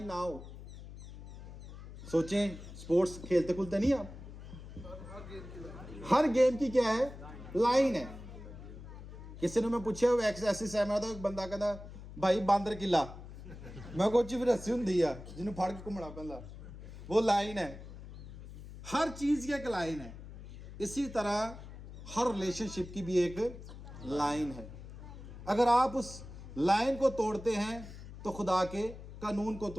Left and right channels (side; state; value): left; noise; hum, 14 dB below the sound